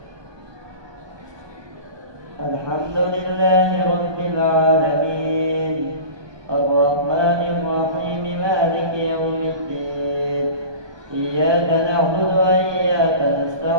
الحمد لله رب العالمين الرحمن الرحيم مالك يوم الدين إياك نعبد وإياك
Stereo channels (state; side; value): late; left; 1.2 ms